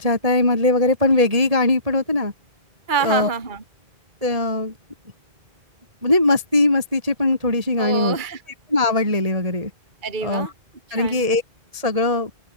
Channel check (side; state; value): left; late; 1.8 ms